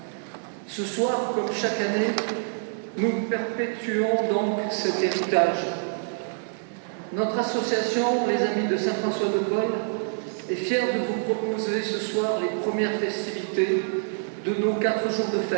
Ce soir, comme chaque année, nous perpétuons donc cet héritage. Notre association, les Amis de Saint-François de Paule, est fière de vous proposer ce soir les premières festivités de nos 4 jours de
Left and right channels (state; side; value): silent; left; 61 dB below the other